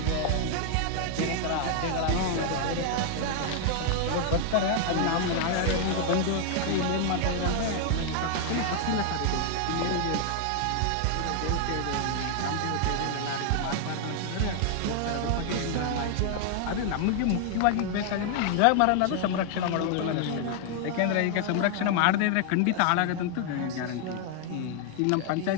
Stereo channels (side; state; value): both; different; correlation 0.00